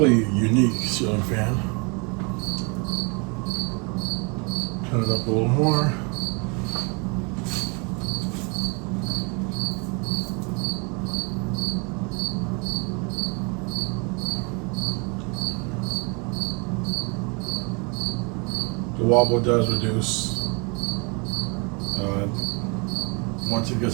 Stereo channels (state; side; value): quieter; left; 32.8 dB